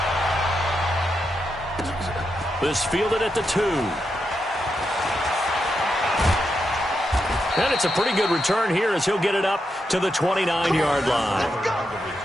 This fielded at the 2. And it's a pretty good return here as he'll get it up to the 29-yard line.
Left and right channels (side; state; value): both; normal; correlation 0.85